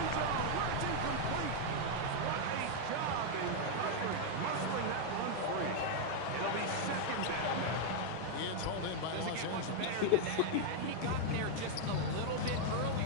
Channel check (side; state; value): both; different; correlation 0.00